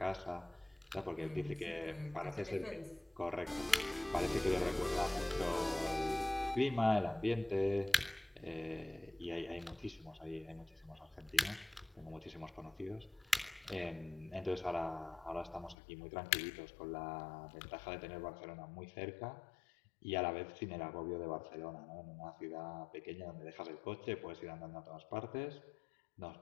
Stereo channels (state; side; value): drops out; right; at 15.8 s